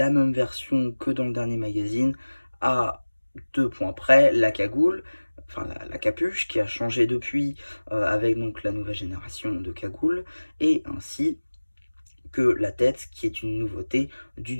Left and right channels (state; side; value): inverted; both; correlation -1.00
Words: même version que dans le dernier magazine. À 2 points près, la cagoule. Enfin, la capuche qui a changé depuis avec donc la nouvelle génération de cagoules. Et ainsi que la tête, qui est une nouveauté du